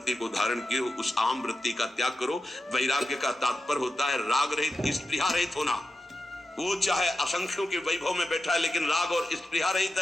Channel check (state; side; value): normal; both; correlation 0.90